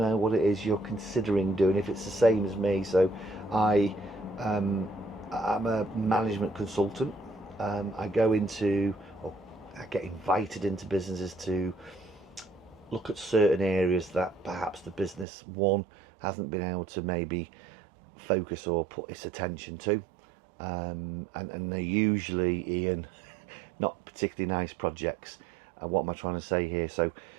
what it is you're considering doing, if it's the same as me. So I'm a management consultant. I go into, or I get invited into businesses to look at certain areas that perhaps the business one hasn't been able to maybe focus or put its attention to, and they're usually, Ian, not particularly nice projects. What am I trying to say here? So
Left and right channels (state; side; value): drops out; left; at 15.2 s